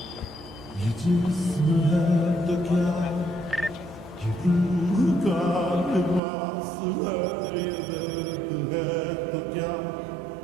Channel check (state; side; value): drops out; left; at 6.2 s